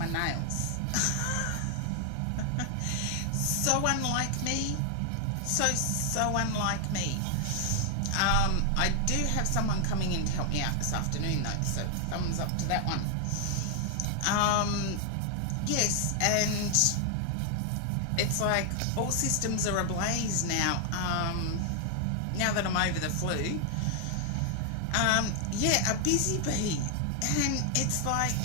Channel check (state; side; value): different; both; correlation 0.00